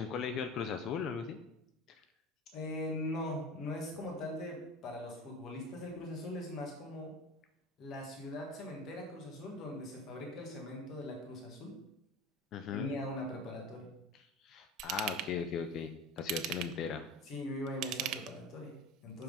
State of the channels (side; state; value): both; normal; correlation 0.34